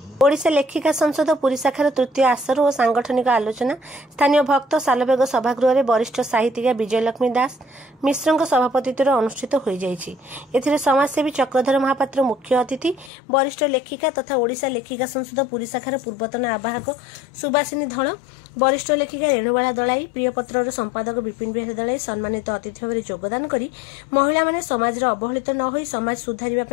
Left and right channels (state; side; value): drops out; right; at 13.1 s